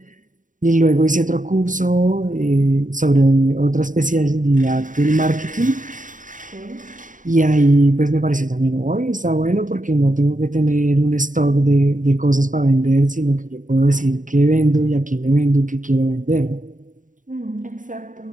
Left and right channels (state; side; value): late; left; 0.38 ms